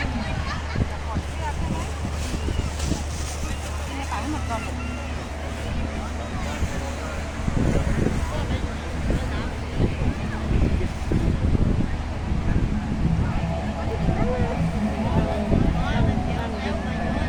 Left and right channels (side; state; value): both; identical; correlation 1.00